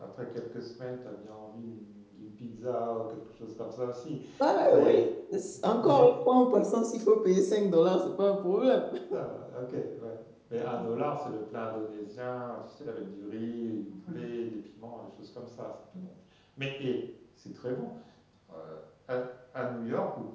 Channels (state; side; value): identical; both; correlation 1.00